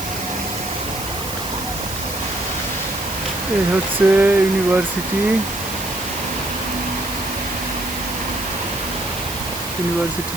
এই হচ্ছে ইউনিভার্সিটির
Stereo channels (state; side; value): noise; right; hiss, 8 dB below the sound